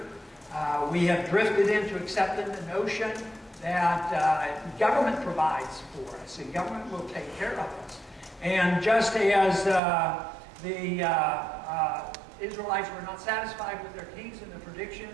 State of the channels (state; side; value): drops out; left; at 9.8 s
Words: We have drifted into accepting the notion that government provides for us, and government will take care of us. And just as the Israelites were not satisfied with their kings and the